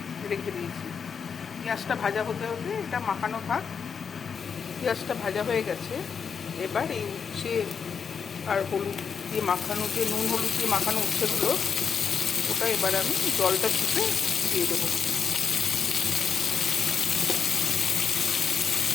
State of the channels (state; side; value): quieter; right; 6.4 dB